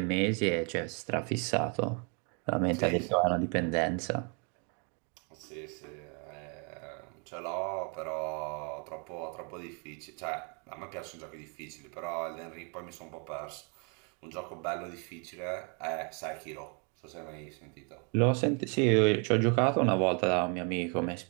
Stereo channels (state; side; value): quieter; left; 37.0 dB